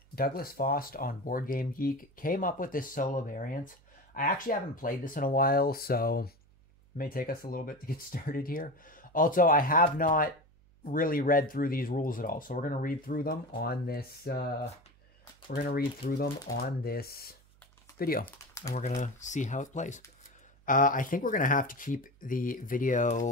Douglas Foss on Board Game Geek came up with this solo variant. I actually haven't played this in a while, so it may take us a little bit to get started here. Also, I have not really read through these rules at all, so we're going to read through them on this. Video, and we're going to see how it plays. I think we're going to have to keep the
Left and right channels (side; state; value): right; noise; hum, 29 dB below the sound